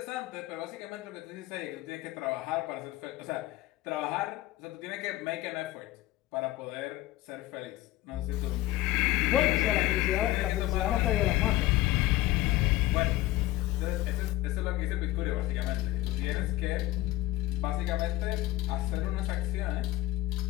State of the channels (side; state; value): right; quieter; 17.1 dB